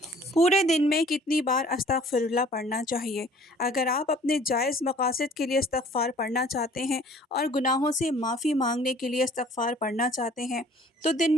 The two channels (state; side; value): normal; both; correlation 0.52